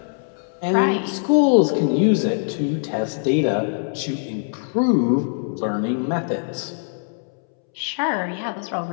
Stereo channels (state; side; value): silent; right; 64 dB below the other